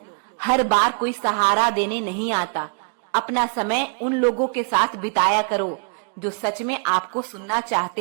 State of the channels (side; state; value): left; quieter; 39.6 dB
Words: हर बार कोई सहारा देने नहीं आता। अपना समय उन लोगों के साथ बिताया करो जो सच में आपको सुनना